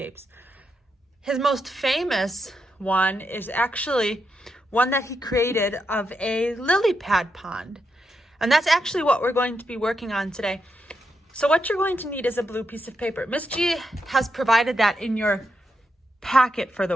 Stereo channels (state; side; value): normal; both; correlation 0.83